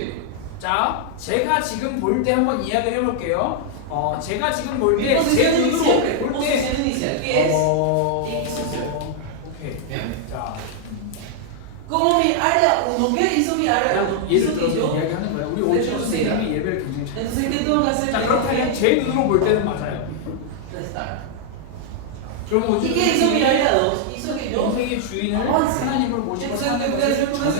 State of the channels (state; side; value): different; both; correlation -0.01